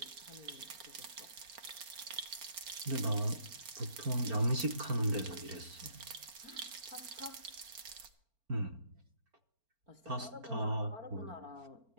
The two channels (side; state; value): left; late; 4.4 ms